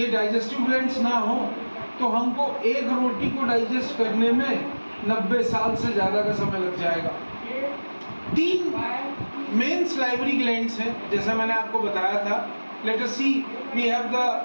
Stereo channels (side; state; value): both; inverted; correlation -1.00